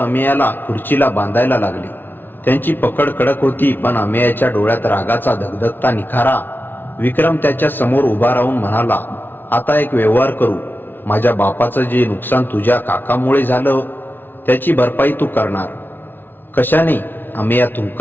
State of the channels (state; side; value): late; right; 0.095 ms